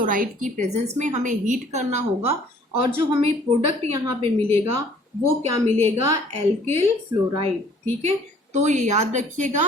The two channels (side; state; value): both; normal; correlation 0.56